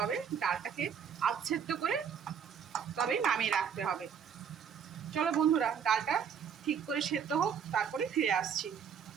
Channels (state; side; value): quieter; left; 7.5 dB